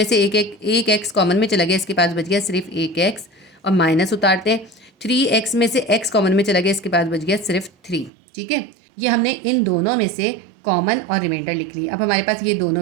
से एक x कॉमन में चला गया, इसके पास बच गया सिर्फ एक x और माइनस उतारते हैं। 3x में से x कॉमन में चला गया, इसके पास बच गया सिर्फ 3। ठीक है, ये हमने इन दोनों में से कॉमन और रिमाइंडर लिख ली। अब हमारे पास ये दोनों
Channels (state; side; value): drops out; left; at 8.1 s